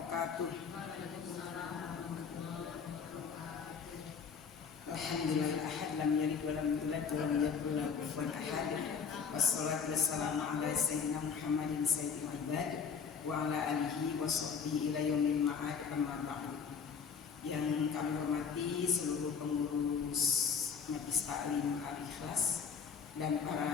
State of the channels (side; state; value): right; quieter; 6.3 dB